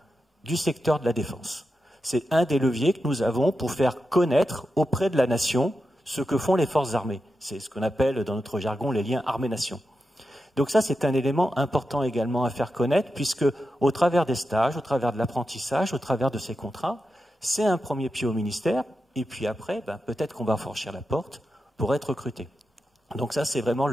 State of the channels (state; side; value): normal; both; correlation 0.89